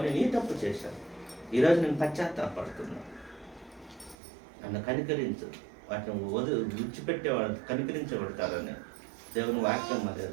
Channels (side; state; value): left; drops out; at 4.2 s